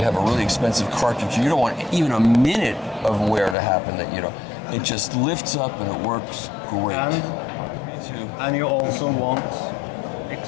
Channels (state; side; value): drops out; right; at 3.6 s